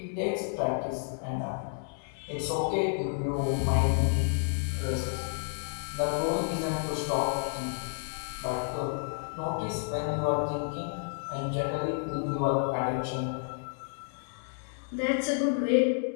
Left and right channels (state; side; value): silent; right; 57 dB below the other